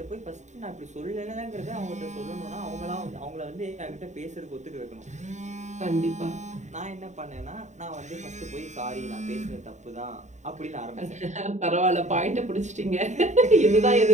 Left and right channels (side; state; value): left; late; 0.34 ms